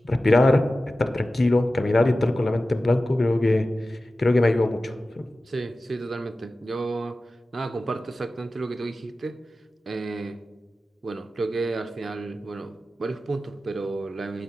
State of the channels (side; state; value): both; normal; correlation 0.94